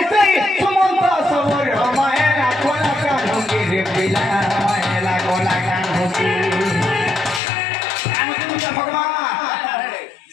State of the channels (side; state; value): right; drops out; at 7.4 s